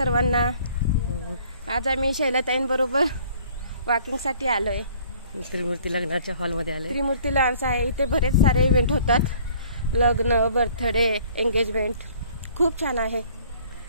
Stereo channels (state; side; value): inverted; both; correlation -0.55